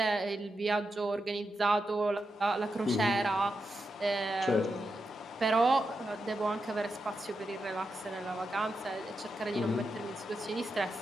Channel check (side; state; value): both; normal; correlation 0.87